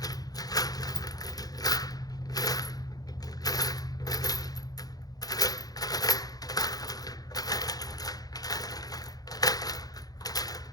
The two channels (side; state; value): right; late; 0.18 ms